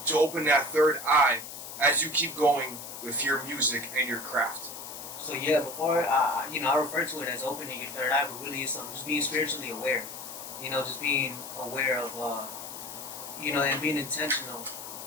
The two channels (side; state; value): left; noise; hiss, 11 dB below the sound